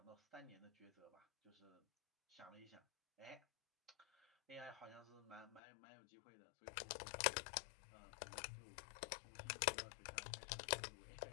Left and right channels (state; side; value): drops out; right; at 5.6 s